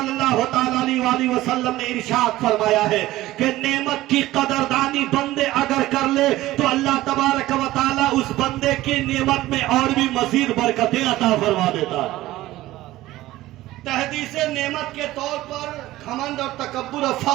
اللہ تعالیٰ علیہ وسلم نے ارشاد فرمایا ہے کہ نعمت کی قدردانی بندے اگر کر لے تو اللہ تبارک و تعالیٰ اس بندے کی نعمت میں اور بھی مزید برکتیں عطا فرما دیتا ہے. تحدیث نعمت کے طور پر گھمنڈ اور تکبر اور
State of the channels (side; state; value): left; quieter; 16.4 dB